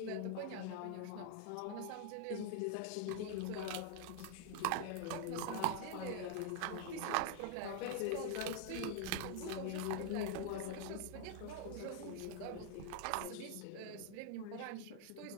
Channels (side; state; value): both; different; correlation 0.00